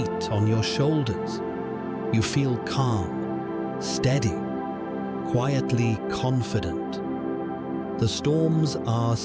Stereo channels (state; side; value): identical; both; correlation 1.00